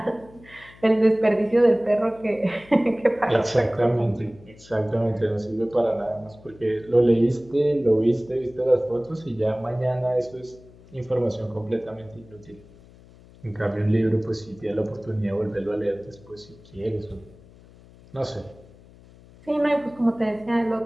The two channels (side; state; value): left; noise; hum, 24 dB below the sound